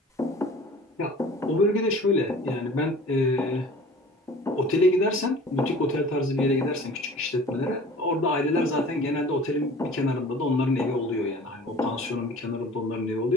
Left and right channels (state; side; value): normal; both; correlation 0.45